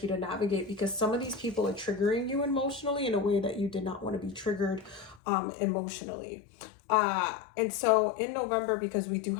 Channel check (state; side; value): drops out; right; at 5.2 s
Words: to navigate because some of these people are triggering you emotionally in a way that you did not want to be triggered emotionally. And so in November, because we do